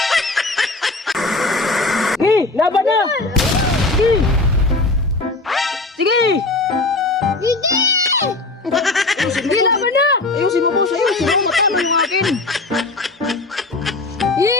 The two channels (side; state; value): right; quieter; 3.2 dB